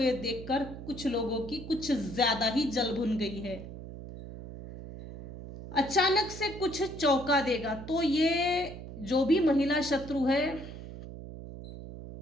देखकर कुछ लोगों की कुछ ज्यादा ही जल भुन गई है। अचानक से कुछ चौंका देगा। तो ये जो भी महिला शत्रु है,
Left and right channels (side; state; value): right; noise; hum, 12 dB below the sound